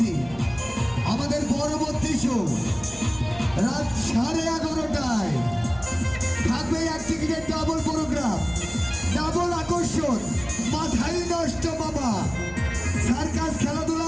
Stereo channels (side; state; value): left; noise; rumble, 19 dB below the sound